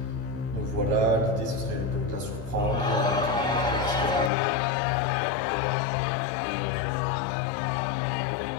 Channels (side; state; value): right; drops out; at 4.3 s